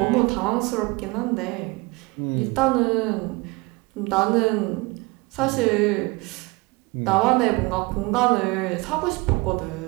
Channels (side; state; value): left; quieter; 24.7 dB